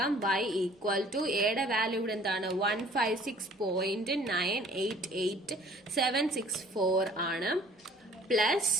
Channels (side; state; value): both; normal; correlation 0.53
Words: y ഈക്വൽ ടു എയുടെ വാല്യൂ ഇവിടെ എന്താണ്? 156.988764 ആണ്. പ്ലസ്